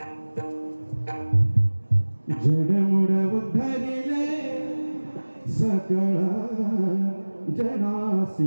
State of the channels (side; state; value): both; inverted; correlation -1.00